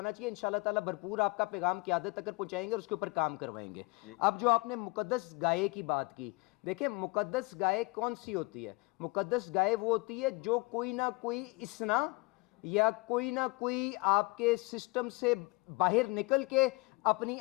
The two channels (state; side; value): quieter; right; 24.9 dB